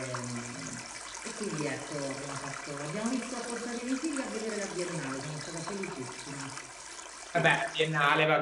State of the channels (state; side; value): identical; both; correlation 1.00